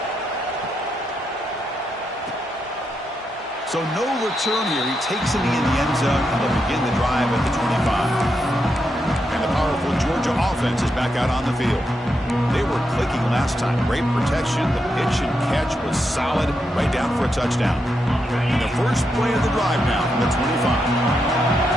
So no return here. He takes it in the end zone, and they'll begin the drive at the 25. And the powerful Georgia offense is back out on the field. They were clicking last time. Great protection. The pitch and catch was solid, right down for a touchdown. And the first play of the drive now from the 25.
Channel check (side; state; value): both; normal; correlation 0.83